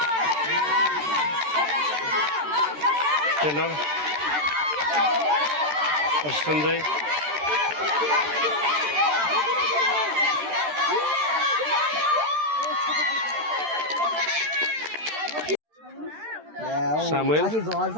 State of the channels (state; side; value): late; left; 13 ms